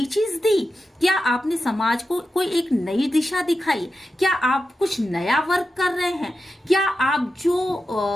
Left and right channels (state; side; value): normal; both; correlation 0.91